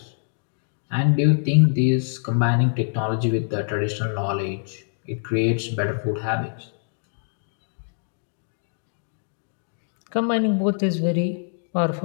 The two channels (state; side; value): silent; right; digital silence